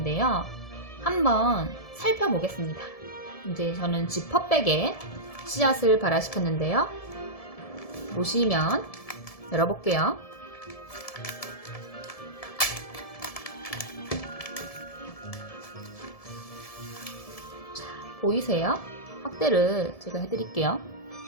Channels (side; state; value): right; late; 1.7 ms